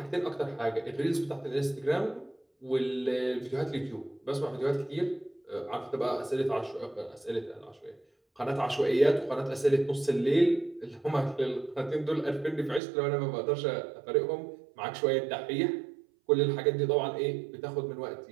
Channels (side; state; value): left; drops out; at 12.8 s